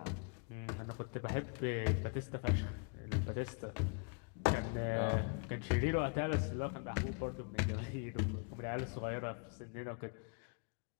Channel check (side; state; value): right; quieter; 37.1 dB